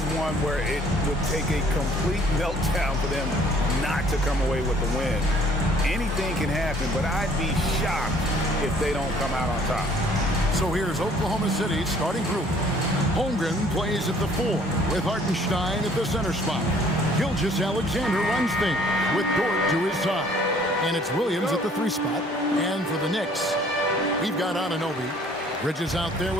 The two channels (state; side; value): normal; both; correlation 0.58